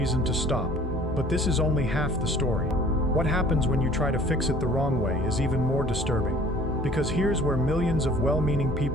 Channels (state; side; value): normal; both; correlation 0.51